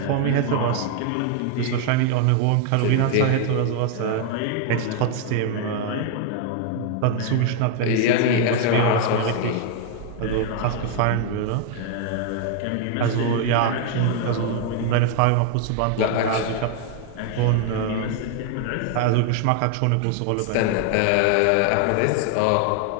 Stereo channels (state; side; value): different; both; correlation 0.00